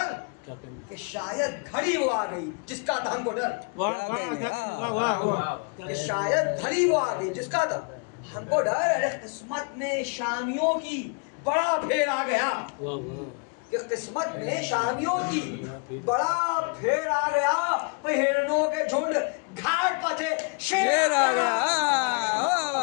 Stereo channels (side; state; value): right; quieter; 35.5 dB